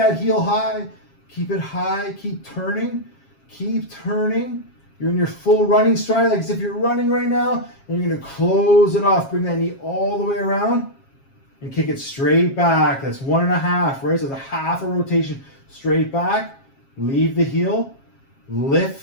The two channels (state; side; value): late; right; 7.4 ms